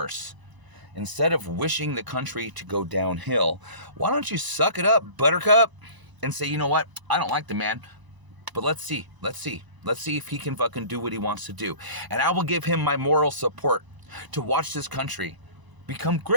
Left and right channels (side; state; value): left; late; 1.0 ms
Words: Instead of wishing the country to go downhill, why don't you suck it up, buttercup, and say, you know what, I don't like the man, but let's see if he can fucking do what he wants to do. And I will give him my moral support to watch this country become